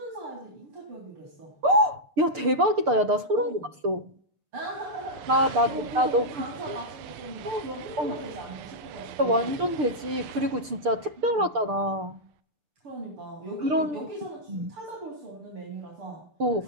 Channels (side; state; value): left; late; 6.7 ms